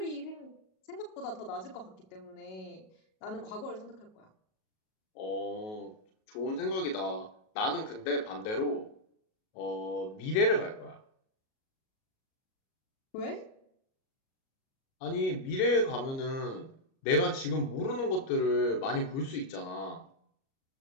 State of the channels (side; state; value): right; late; 37 ms